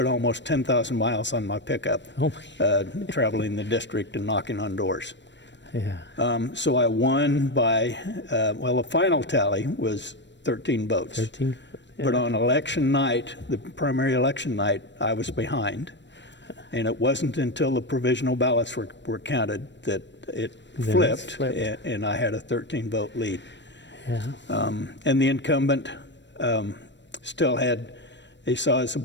almost 10,000 miles on my pickup, traveling the district and knocking on doors. Yeah. So I won by, the final tally was 13 votes. 13? Yeah. But on election night, the primary election night, I was behind. And it wasn't until the provisional ballots were counted that it flipped, and I had a 13-vote lead. Yeah. And the incumbent still had a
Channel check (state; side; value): late; right; 0.53 ms